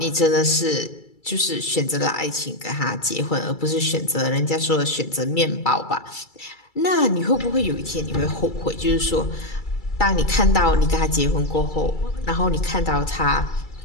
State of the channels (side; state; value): right; late; 2.3 ms